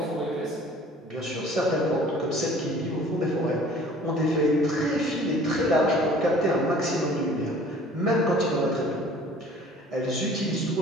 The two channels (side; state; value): both; normal; correlation 0.50